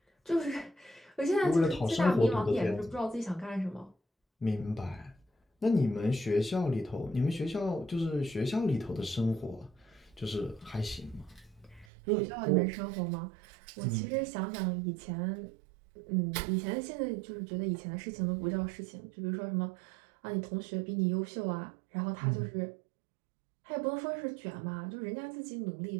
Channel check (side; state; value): left; drops out; at 11.9 s